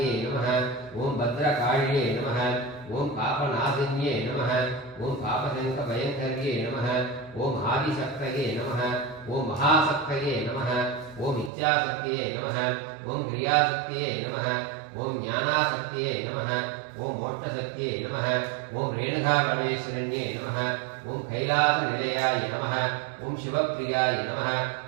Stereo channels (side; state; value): left; drops out; at 11.5 s